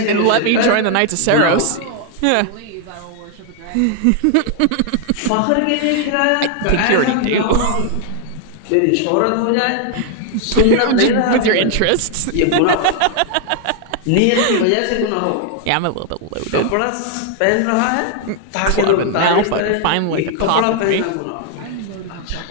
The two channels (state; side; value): different; both; correlation 0.00